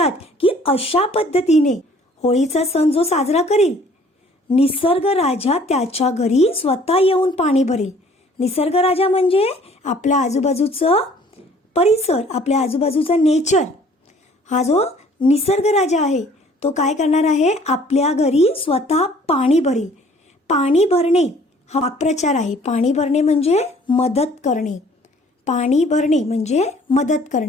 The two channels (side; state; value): both; normal; correlation 0.56